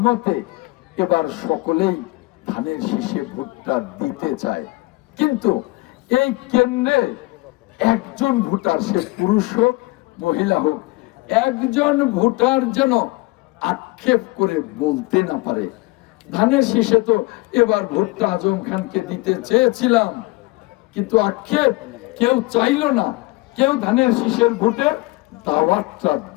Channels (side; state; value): right; quieter; 22.6 dB